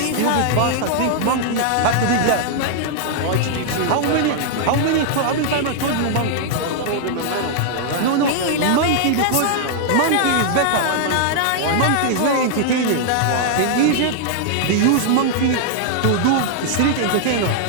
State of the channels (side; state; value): both; different; correlation -0.01